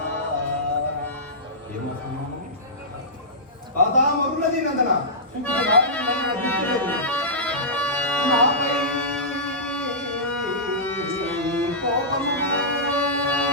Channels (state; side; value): normal; both; correlation -0.16